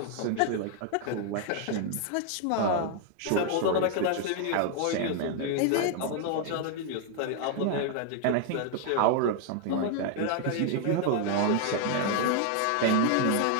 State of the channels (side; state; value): both; different; correlation 0.00